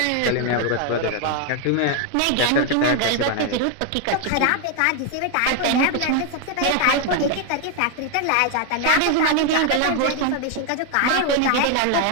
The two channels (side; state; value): both; different; correlation 0.01